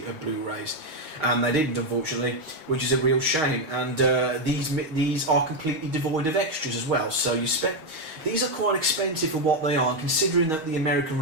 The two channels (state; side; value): late; left; 6.5 ms